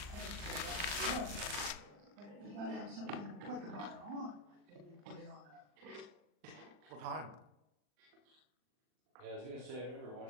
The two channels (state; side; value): late; left; 39 ms